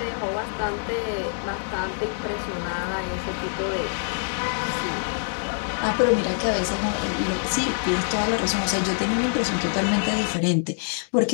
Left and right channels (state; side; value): silent; right; digital silence